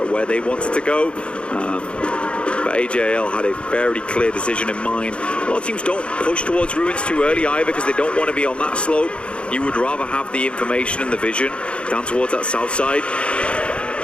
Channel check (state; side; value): late; right; 0.058 ms